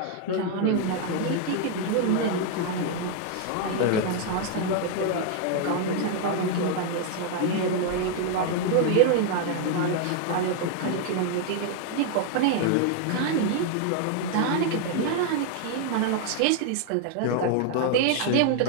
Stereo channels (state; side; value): different; both; correlation 0.00